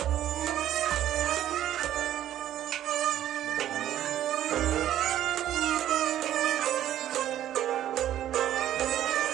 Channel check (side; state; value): left; quieter; 12.0 dB